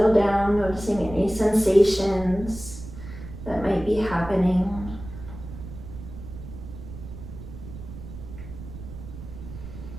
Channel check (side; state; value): right; noise; rumble, 12 dB below the sound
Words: down, noticing any sensations that might be happening.